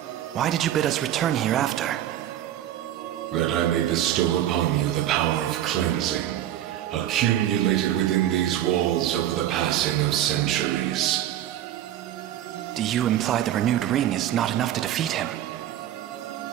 why did you bid us return here after? That I may bestow upon you the power of cleansing, accumulated within these walls over the passing of centuries. Do you imply the renewed ring is not enough to defeat him?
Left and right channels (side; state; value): left; quieter; 12.1 dB